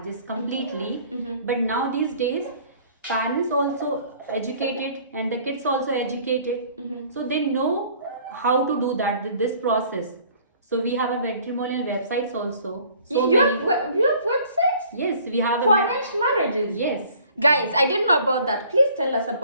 completely. But now these days, parents also educated and the kids also educated. So they know how to do that, this process. So we have a matrimonial websites also. So you have websites? Yes, we have For arranged marriages? Yes. Guys, I didn't know about that. Please tell us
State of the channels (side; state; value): both; inverted; correlation -0.54